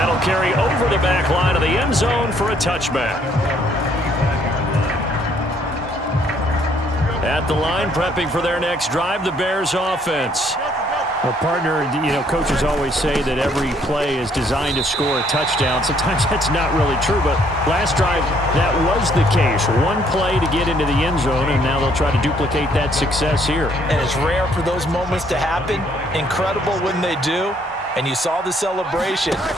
carry over the back line of the end zone for a touchback. At the line, prepping for their next drive, the Bears offense. Well, partner, you know, coaches always say that every play is designed to score a touchdown. Sometimes that's not really true, but last drive, that was the case. One play to get into the end zone, and now they'll try to duplicate that success here. And it's rare for those moments to happen. Incredible when they do. And you saw the celebration.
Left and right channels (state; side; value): normal; both; correlation 0.66